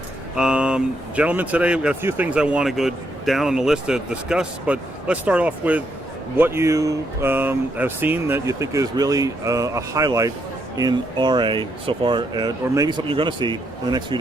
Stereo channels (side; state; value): both; normal; correlation 0.77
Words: Gentlemen, today we've got a few things I want to go down on the list to discuss, but let's start off with what you have seen that you think is really a highlight in RA so far, or maybe something you're going to see in the next few